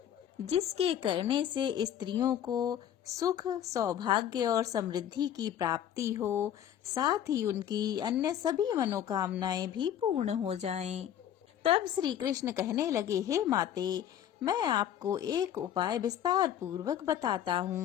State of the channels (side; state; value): right; quieter; 10.3 dB